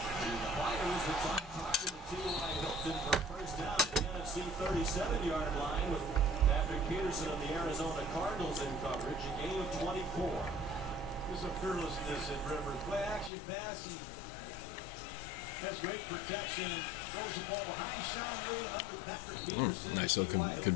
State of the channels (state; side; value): drops out; right; at 13.3 s